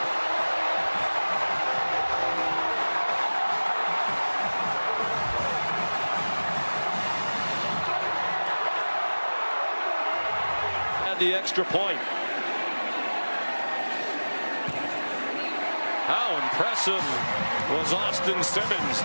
The extra point. How impressive was Austin Simmons.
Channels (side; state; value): both; inverted; correlation -1.00